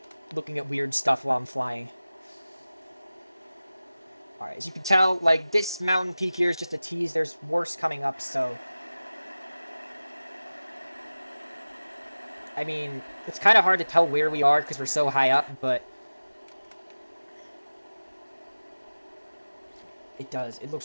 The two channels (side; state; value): both; inverted; correlation -0.97